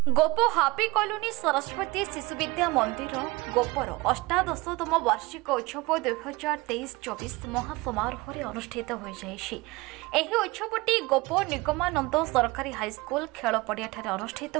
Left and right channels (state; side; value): quieter; left; 23.1 dB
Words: गोप happy colony Saraswati Shishu Vidya मंदिर गोपर अष्टादशतम वार्षिक उत्सव 2023-24 महासमारोह अनुष्ठित हो जाए। उत्सवटी गोप निगमानंद सरकारी हाईस्कूल खेल पड़िया अनुष्ठित